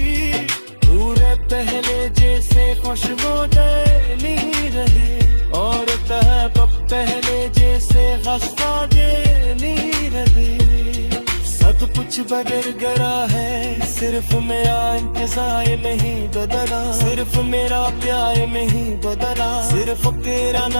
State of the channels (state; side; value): inverted; both; correlation -1.00